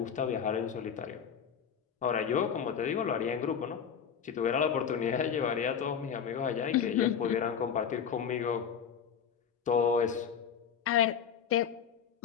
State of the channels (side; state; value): right; quieter; 7.6 dB